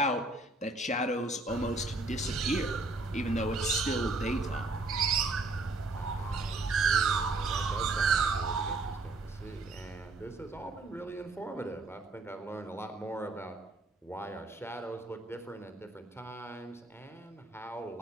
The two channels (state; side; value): quieter; left; 3.2 dB